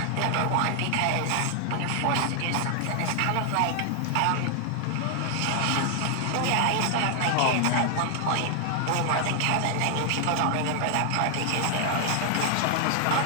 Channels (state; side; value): different; both; correlation 0.00